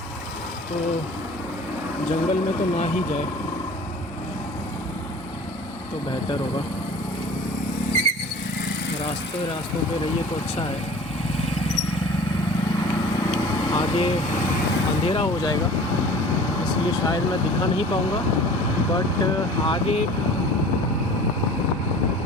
तो जंगल में तो ना ही जाए तो बेहतर होगा। रास्तों पे रहिए तो अच्छा है। आगे अंधेरा हो जाएगा इसलिए शायद मैं दिखा नहीं पाऊँगा, बट आगे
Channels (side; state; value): both; normal; correlation 0.43